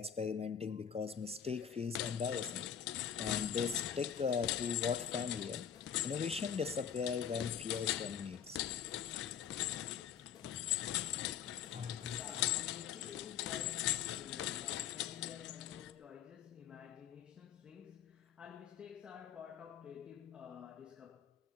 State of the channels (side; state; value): right; quieter; 8.4 dB